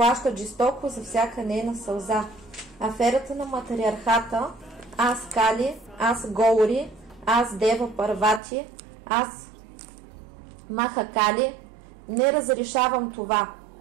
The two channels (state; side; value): drops out; left; at 8.4 s